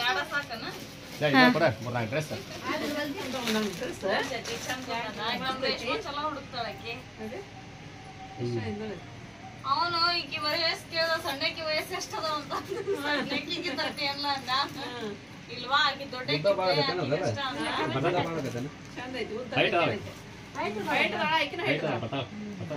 ಸಾಕನ ಚಲೋ ಹುಡುಕ್ತಾಳಕ್ಕೆ. ಅವನು ಈಕಿ ವಯಸ್ಸು ಕೇಳ್ದ, ಸಣ್ಣಕ್ಕಿ ವಯಸ್ಸು ಎಷ್ಟದ ಅಂತ. ಸಣ್ಣಕ್ಕಿಗೆ 30 ಅಲ್ಲ ಅಂದ. ಇಲ್ವಾ ಆಕಿ ದೊಡ್ಡ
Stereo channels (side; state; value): both; identical; correlation 1.00